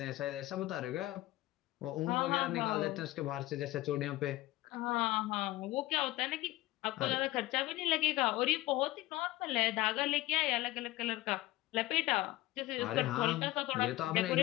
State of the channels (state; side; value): quieter; right; 17.8 dB